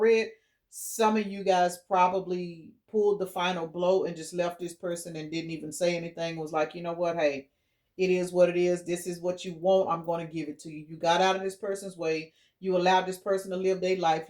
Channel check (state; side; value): identical; both; correlation 1.00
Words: Some of you guys probably pulled the final blow and just left this person and didn't even say anything. Was like, you know what, hey, it is what it is. This is what you want. I'm going to give it to you. You got out of this person's way. You allowed this person to live their life.